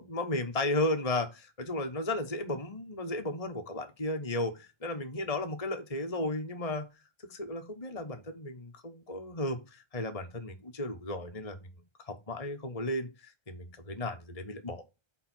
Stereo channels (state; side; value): late; right; 1.7 ms